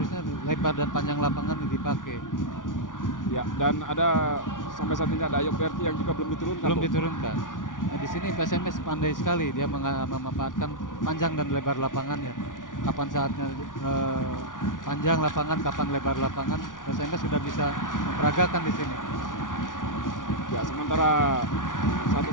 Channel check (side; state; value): right; late; 0.88 ms